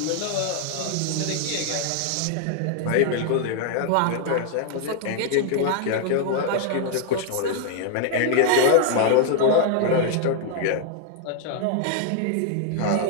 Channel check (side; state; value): both; different; correlation 0.00